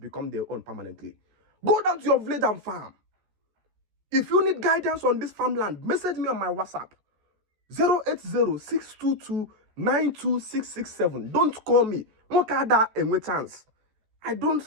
their own permanently. Go down to your village and farm. If you need guidance on this farmland, message me on my WhatsApp. 080-622-92667. Don't call me. Chance. I don't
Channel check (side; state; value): left; late; 14 ms